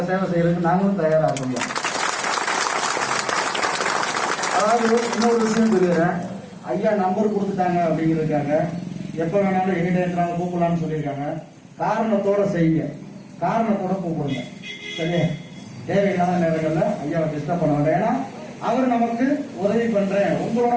சேவை செய்யறதுக்கு நாங்களும் தயாராக முடியும். அதாவது இன்னொரு விஷயம் சொல்லிடுறேன், ஐயா நம்பர் கொடுத்துட்டாங்க அப்படிங்கிறதுக்காக எப்ப வேணாலும் எங்கிட்ட இருந்தாலும் கூப்பிடலாம்னு சொல்லியிருக்காங்க. காரணத்தோட செய்யுங்க, காரணத்தோட கூப்பிடுங்க, சரியா? தேவையில்லாத நேரங்கள்ல ஐயாவை டிஸ்டர்ப் பண்ண வேண்டாம். ஏன்னா அவர் நமக்கு உதவி பண்றேன், உங்களோட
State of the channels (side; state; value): both; identical; correlation 1.00